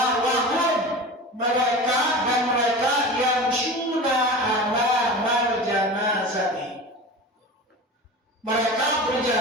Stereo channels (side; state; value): both; normal; correlation 0.32